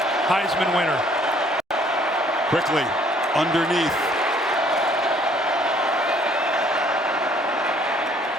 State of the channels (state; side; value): normal; both; correlation 0.60